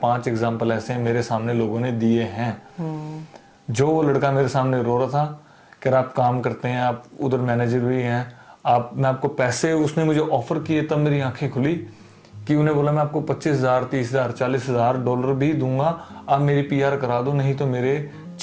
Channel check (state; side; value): identical; both; correlation 1.00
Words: एग्जाम्पल ऐसे हैं मेरे सामने लोगों ने दिए हैं। जो वो लड़का मेरे सामने रो रहा था, कह रहा आप काम करते हैं, आप उधर मैनेजर भी हैं, मैं आपको पैसे, उसने मुझे ऑफर किए, तब मेरी आंखें खुली कि उन्हें बोला मैं आपको $25,000 $30,000 $40,000 भी दूंगा, आप मेरी PR करा दो, नहीं तो मेरे